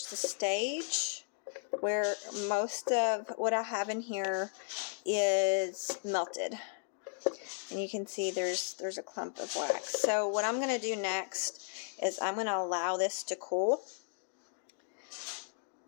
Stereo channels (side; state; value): right; silent; digital silence